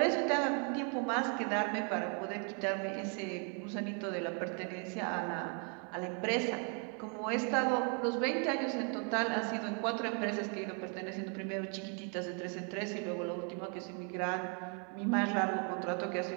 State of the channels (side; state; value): left; quieter; 39.1 dB